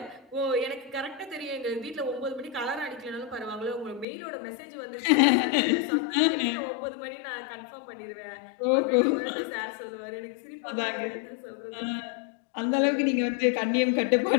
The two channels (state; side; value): drops out; right; at 4.0 s